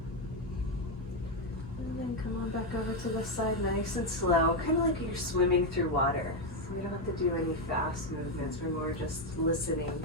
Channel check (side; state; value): both; normal; correlation 0.06